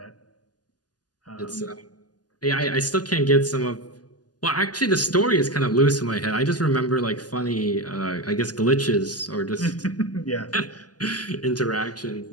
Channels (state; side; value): late; right; 0.69 ms